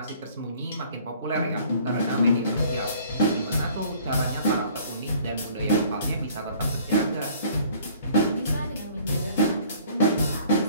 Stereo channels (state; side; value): inverted; both; correlation -0.54